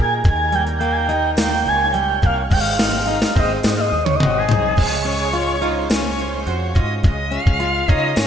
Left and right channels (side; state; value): both; normal; correlation 0.73